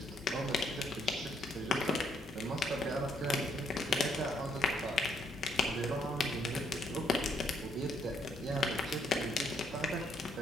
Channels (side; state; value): both; normal; correlation 0.72